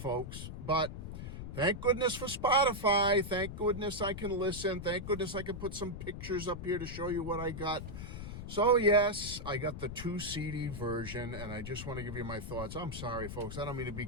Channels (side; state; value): left; noise; rumble, 8 dB below the sound